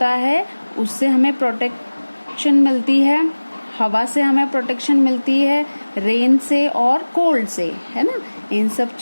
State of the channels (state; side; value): inverted; both; correlation -1.00